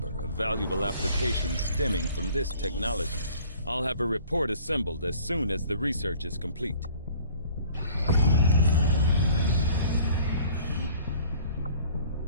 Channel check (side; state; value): both; inverted; correlation -0.52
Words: of valuable applications stemming from this technology. I'll have a report assembled as soon as the research is complete.